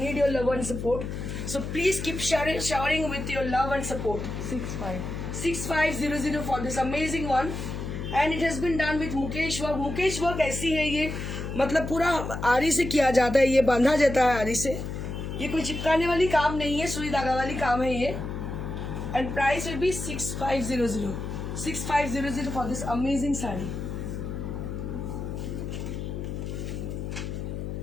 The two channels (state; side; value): noise; left; hum, 5 dB below the sound